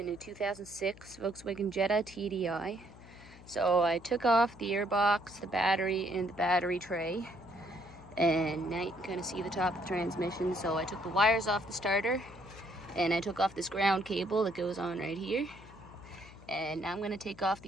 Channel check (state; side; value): noise; left; hum, 20 dB below the sound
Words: a 2006 Volkswagen Jetta TDI. So I took off the airbox, the battery, and the battery tray. And now you can kind of see the top of the transmission. So I took the wires off the starter, and I took off this ground cable that goes on right here. And now I'm going to take off